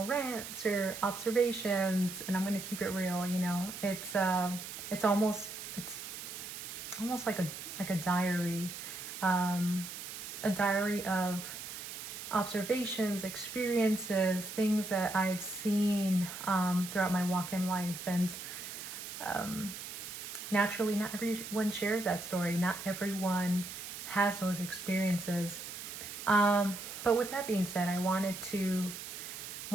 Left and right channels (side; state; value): right; noise; hiss, 9 dB below the sound